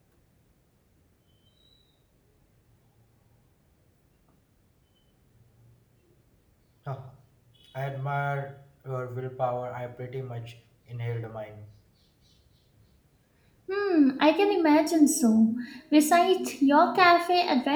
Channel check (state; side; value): identical; both; correlation 1.00